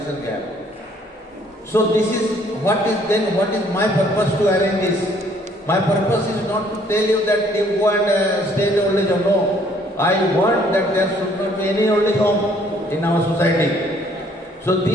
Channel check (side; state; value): both; normal; correlation 0.62